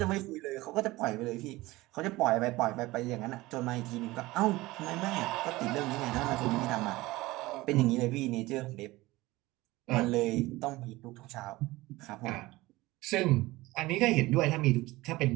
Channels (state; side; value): quieter; left; 19.5 dB